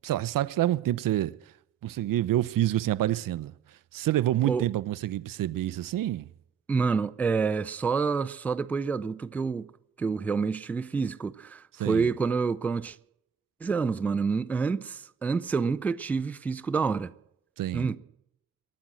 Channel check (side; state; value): left; quieter; 7.0 dB